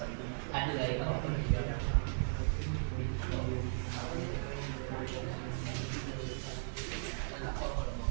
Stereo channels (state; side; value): silent; left; digital silence